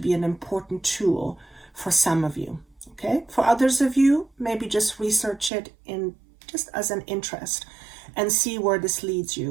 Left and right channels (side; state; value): left; drops out; at 5.5 s